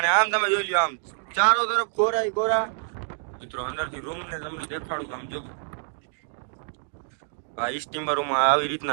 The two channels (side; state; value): left; silent; 61 dB below the other